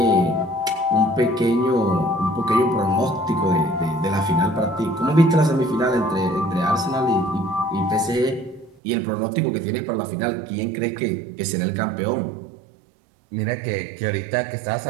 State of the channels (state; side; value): drops out; left; at 8.8 s